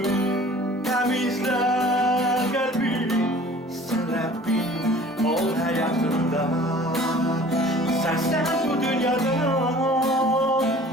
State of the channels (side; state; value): both; normal; correlation 0.48